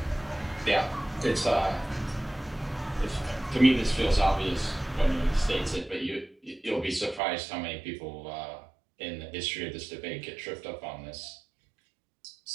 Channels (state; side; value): drops out; left; at 7.2 s